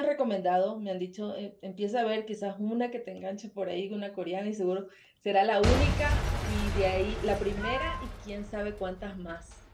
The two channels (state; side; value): identical; both; correlation 1.00